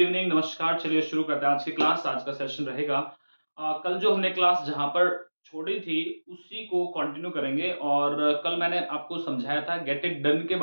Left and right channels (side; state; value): both; inverted; correlation -1.00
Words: नमस्कार। चलिए शुरू करते हैं आज की क्लास। आज का सेशन रहेगा कल जो हमने क्लास जहां पर छोड़ी थी उसी को कंटिन्यू करेंगे। और कल मैंने आपको समझाया था गेट इट डन के